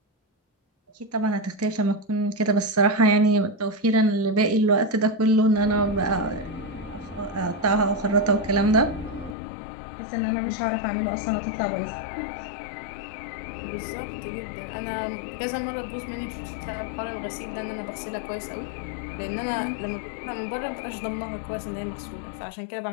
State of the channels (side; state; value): right; drops out; at 9.3 s